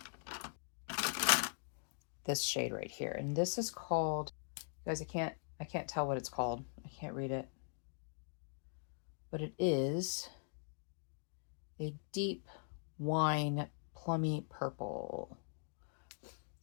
this shade right here. And this is called, guys, I can't tell what it's called. I can't read it. But it is a deep wine plummy purple.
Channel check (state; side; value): silent; right; digital silence